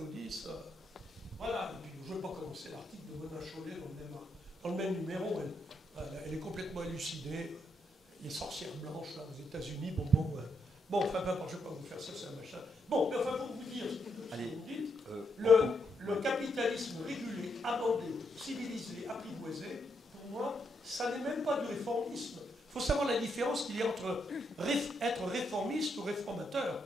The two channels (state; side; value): normal; both; correlation 0.79